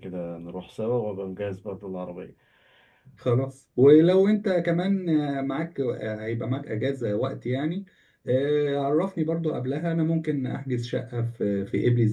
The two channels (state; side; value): identical; both; correlation 1.00